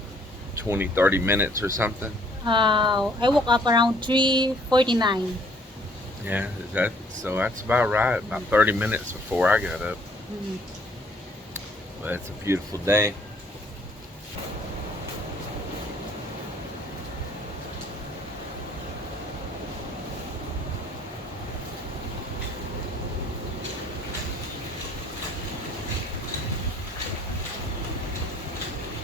20, 30 minutes or something. I woke up around 3:49. Yeah, so that's about right. About 30 minutes before I got up. Mm. But it's a beautiful day.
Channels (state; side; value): normal; both; correlation 0.61